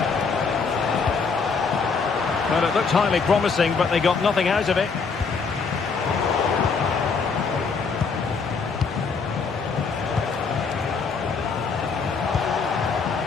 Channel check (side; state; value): right; quieter; 5.1 dB